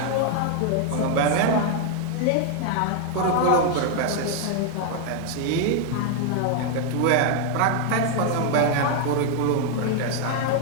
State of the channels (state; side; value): different; both; correlation 0.00